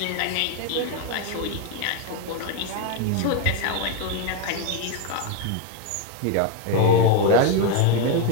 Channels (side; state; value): both; different; correlation 0.02